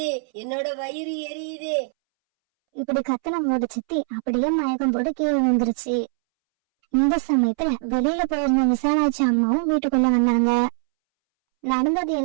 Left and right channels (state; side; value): silent; left; 64 dB below the other